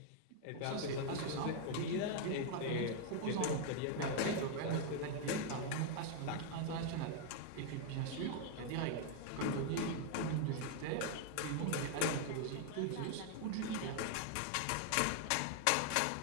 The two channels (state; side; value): different; both; correlation 0.00